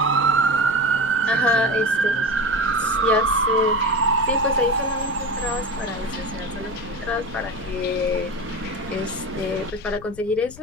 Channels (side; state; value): left; noise; rumble, 19 dB below the sound